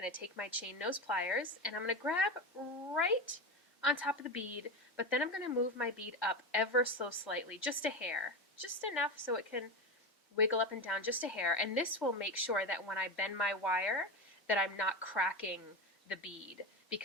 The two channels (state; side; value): normal; both; correlation 0.18